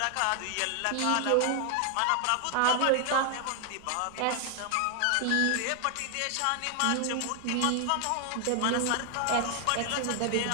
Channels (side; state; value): both; different; correlation 0.00